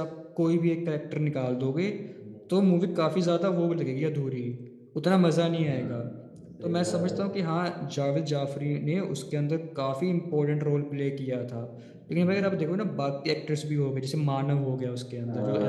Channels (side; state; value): both; identical; correlation 1.00